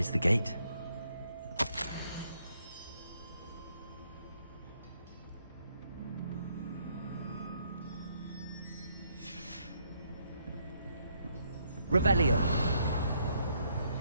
the gate. Revelio.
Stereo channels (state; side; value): inverted; both; correlation -0.72